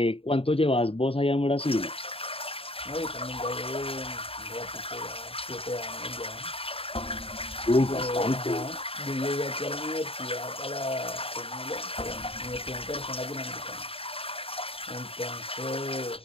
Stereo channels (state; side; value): late; right; 0.27 ms